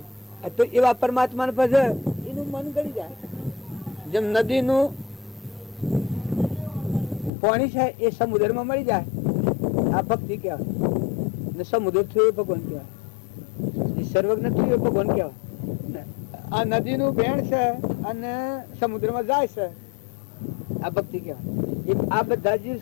તો એવા પરમાત્માને પછી એનું મન ગળી જાય. જેમ નદીનું પાણી છે એ સમુદ્રમાં મળી જાય આ ભક્તિ કહેવાય ને સમુદ્ર થયું એ ભગવાન કહેવાય. એ સર્વજ્ઞ થયું એ ભગવાન કહેવાય. આ નદીનું બેણ છે અને સમુદ્રમાં જાય છે આ ભક્તિ કહેવાય. આ બધા જીવ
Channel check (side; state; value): right; drops out; at 7.3 s